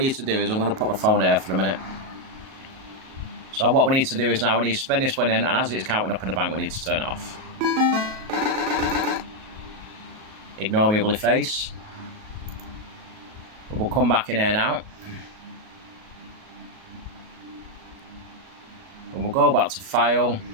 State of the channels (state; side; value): late; left; 37 ms